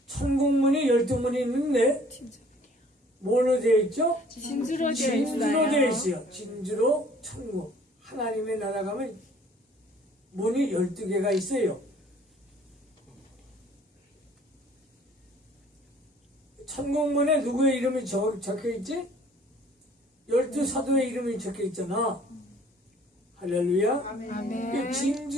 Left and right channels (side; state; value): both; normal; correlation 0.55